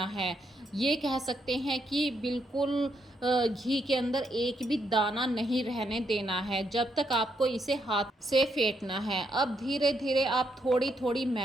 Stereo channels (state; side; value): normal; both; correlation 0.77